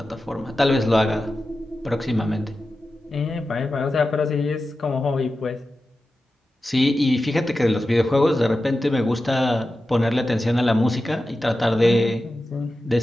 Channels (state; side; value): normal; both; correlation 0.93